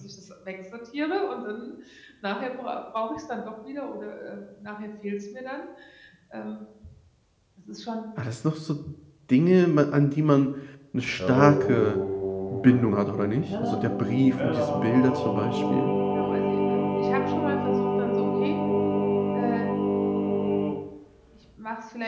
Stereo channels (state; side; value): identical; both; correlation 1.00